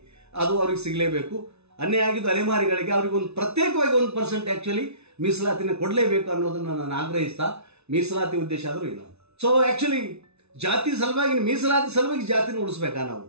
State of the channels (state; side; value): late; left; 0.80 ms